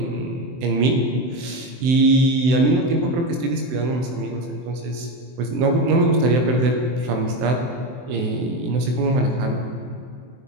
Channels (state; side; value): late; left; 24 ms